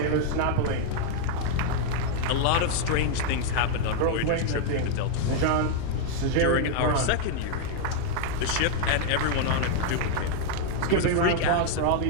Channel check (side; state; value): both; different; correlation 0.00